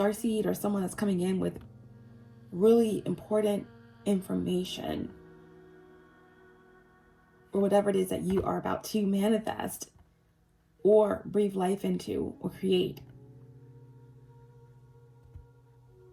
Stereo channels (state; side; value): identical; both; correlation 1.00